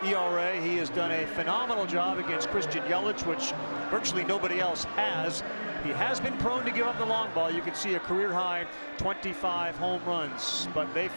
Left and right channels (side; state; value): both; inverted; correlation -1.00